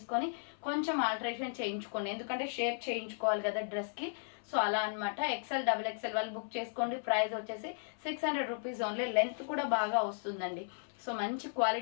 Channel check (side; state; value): right; silent; 54 dB below the other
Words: కొంచెం ఆల్టరేషన్ చేయించుకోండి, ఎందుకంటే షేప్ చేయించుకోవాలి కదా డ్రెస్కి. సో అలా అనమాట. XL XXL వాళ్ళు బుక్ చేసుకోండి. ప్రైస్ వచ్చేసి 600 రూపీస్ ఓన్లీ. లెంత్ కూడా బాగా వస్తుందండి. సో మంచి